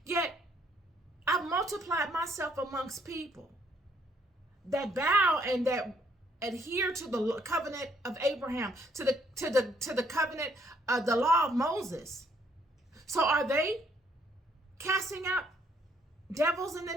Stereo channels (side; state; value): both; normal; correlation 0.67